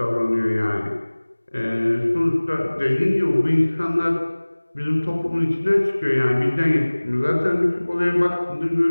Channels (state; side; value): inverted; both; correlation -1.00